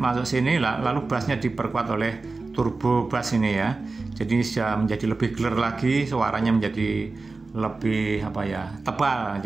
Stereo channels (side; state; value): left; quieter; 3.7 dB